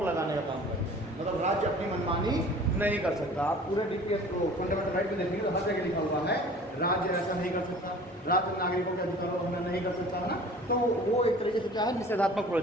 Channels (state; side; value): normal; both; correlation 0.46